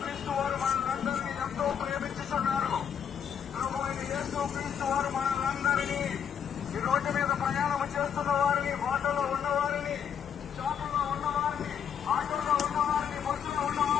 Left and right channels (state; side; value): quieter; right; 8.1 dB